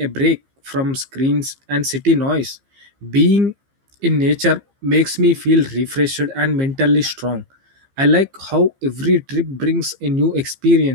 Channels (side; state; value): left; late; 15 ms